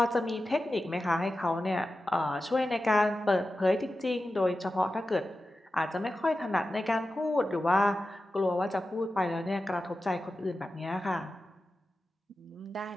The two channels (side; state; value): both; normal; correlation 0.93